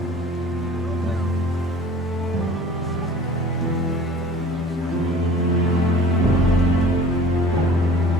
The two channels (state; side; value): normal; both; correlation 0.45